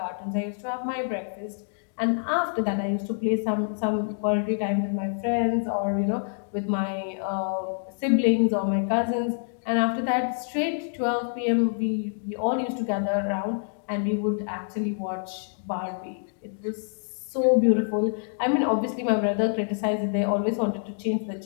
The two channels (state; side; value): silent; right; digital silence